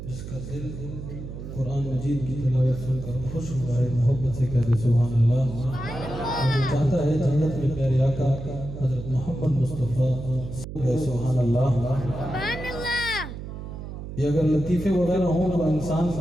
जिसका दिल कुरान मजीद की तिलावत सुनकर खुश हुआ है, मोहब्बत से कहते सुभान अल्लाह। और जो चाहता है जन्नत में प्यारे आका हजरत मोहम्मद मुस्तफ़ा सुभान अल्लाह। ये अगर लतीफ़े वगैरह हों तो इंसान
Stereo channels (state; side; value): noise; right; hum, 9 dB below the sound